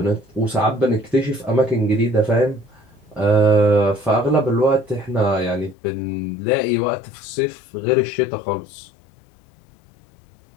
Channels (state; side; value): drops out; right; at 5.8 s